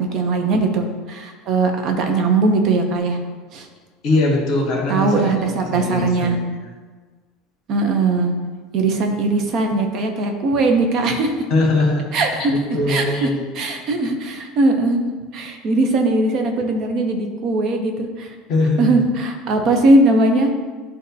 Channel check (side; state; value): both; normal; correlation 0.43